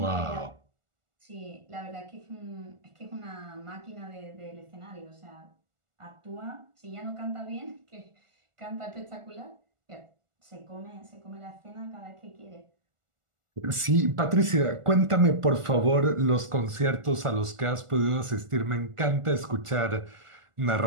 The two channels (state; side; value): late; left; 1.4 ms